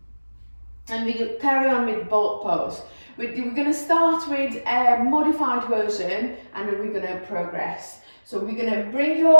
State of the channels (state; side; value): inverted; both; correlation -1.00